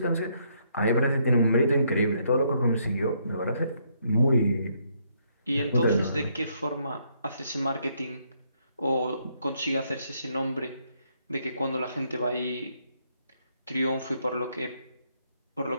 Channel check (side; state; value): both; inverted; correlation -0.72